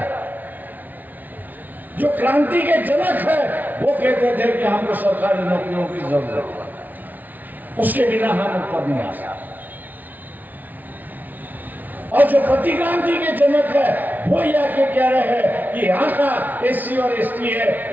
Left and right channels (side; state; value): left; late; 0.080 ms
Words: जो क्रांति के जनक है वो कहते थे कि हमको सरकारी नौकरियों की जरूरत है, उसके बिना हम ऊपर नहीं आ सकते। और जो प्रतिक्रांति के जनक है वो यह के कह रहे हैं कि यहाँ का एससी और एसटी